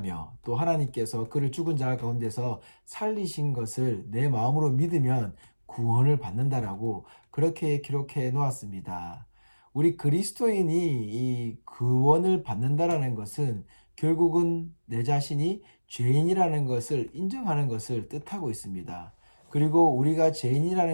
또 하나님께서 그를 죽은 자 가운데서 살리신 것을 내 마음으로 믿으면 구원을 받는다라고 그렇게 기록해 놓았습니다. 우리 그리스도인이 이 구원을 받는다라는 것은 결국은 내 자신이 죄인이라는 것을 인정하는 것을 뜻하고 있습니다. 그리고 우리가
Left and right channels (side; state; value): both; inverted; correlation -1.00